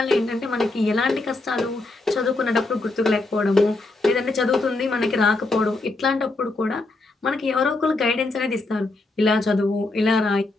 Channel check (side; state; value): right; quieter; 3.1 dB